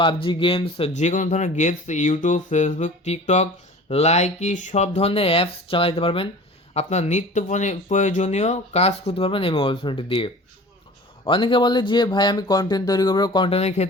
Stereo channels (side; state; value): both; normal; correlation 0.41